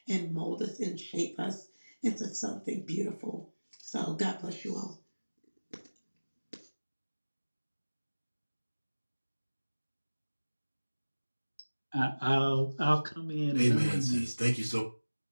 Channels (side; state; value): both; inverted; correlation -1.00